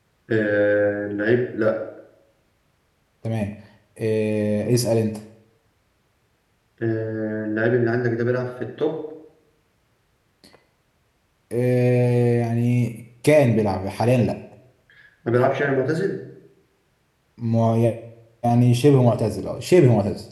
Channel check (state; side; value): identical; both; correlation 1.00